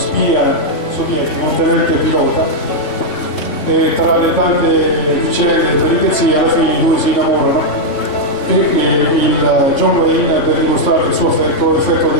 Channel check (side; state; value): right; late; 3.7 ms